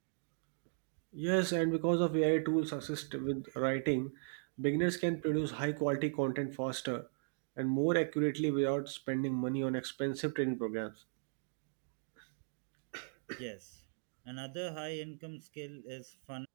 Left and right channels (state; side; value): silent; left; digital silence